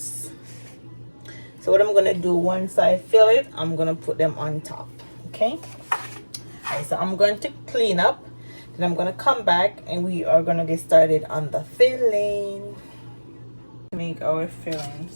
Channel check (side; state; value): both; inverted; correlation -1.00